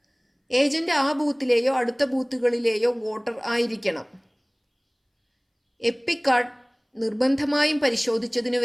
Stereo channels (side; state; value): both; identical; correlation 1.00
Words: ഏജന്റ് ആ ബൂത്തിലെയോ അടുത്ത ബൂത്തുകളിലെയോ വോട്ടർ ആയിരിക്കണം. എപ്പിക് കാർഡ് നിർബന്ധമായും പരിശോധിച്ചതിനു